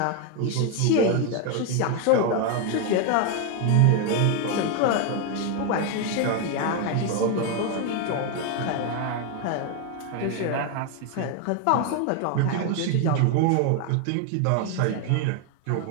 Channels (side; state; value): both; different; correlation 0.01